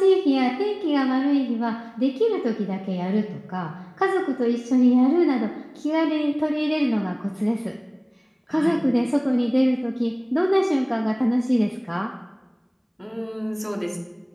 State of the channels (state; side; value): identical; both; correlation 1.00